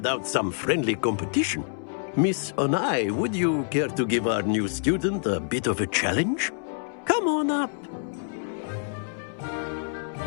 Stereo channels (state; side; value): silent; right; 60 dB below the other